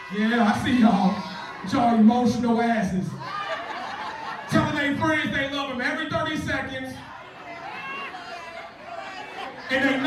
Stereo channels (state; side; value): identical; both; correlation 1.00